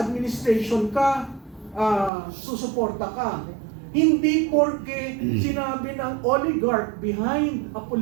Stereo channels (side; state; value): left; drops out; at 2.1 s